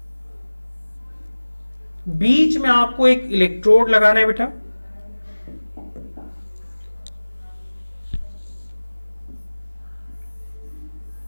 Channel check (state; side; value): inverted; both; correlation -1.00